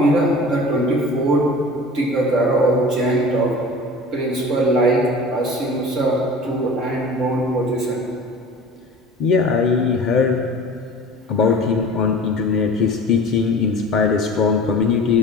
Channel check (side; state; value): both; normal; correlation 0.40